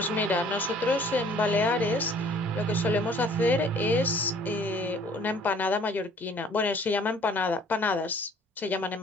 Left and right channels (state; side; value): normal; both; correlation 0.55